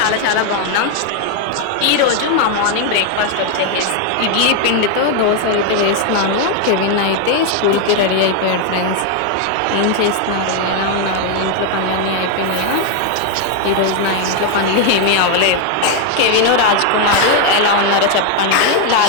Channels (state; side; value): different; both; correlation 0.01